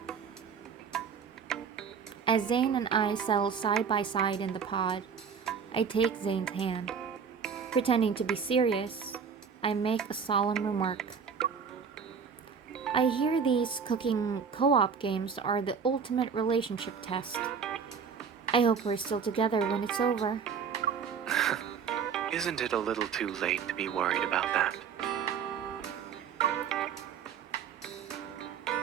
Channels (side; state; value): left; quieter; 6.5 dB